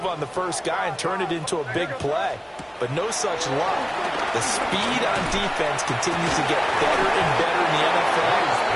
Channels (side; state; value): both; identical; correlation 1.00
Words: on the first guy and turn it into a big play. But no such luck. The speed on defense continues to get better and better in the NFL.